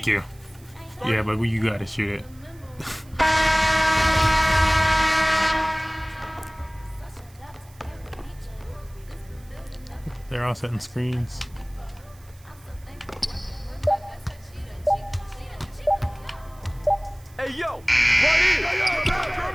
you. Yeah, but you gotta shoot it. They're all setting screens. Hey, yo, right here.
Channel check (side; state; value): right; noise; hiss, 27 dB below the sound